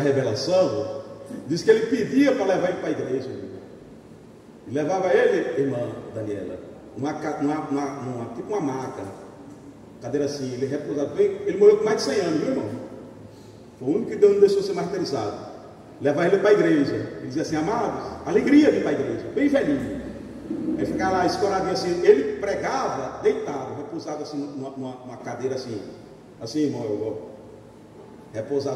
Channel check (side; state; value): both; identical; correlation 1.00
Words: Diz que ele pedia para levar ele para a igreja, e levava ele, irmã Daniela, tipo uma maca, cadeira assim, ele repousado bem. Ele morreu com mais de 100 anos, viu, irmão? Foi o único que Deus não deixou ser martirizado. Levar ele para a igreja, ele dizia assim: amados, alegria de ir para a igreja, bem velhinho. Ele ficava lá escoradinho assim, ele pregava deitado, repousado assim, numa cadeira assim, irmão,